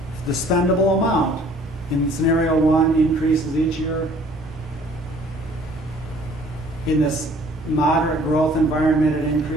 the spendable amount in scenario 1 increases each year. In this moderate growth environment, it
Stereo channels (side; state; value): both; normal; correlation 0.55